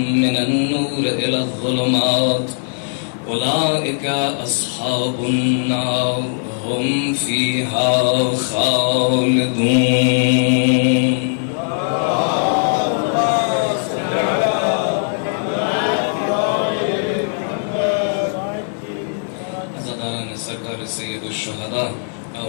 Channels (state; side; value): silent; right; digital silence